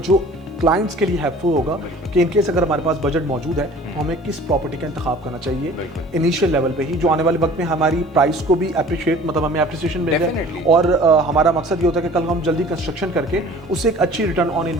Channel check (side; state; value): both; normal; correlation 0.47